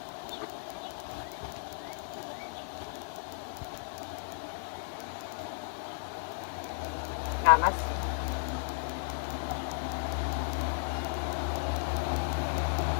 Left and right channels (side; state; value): right; silent; digital silence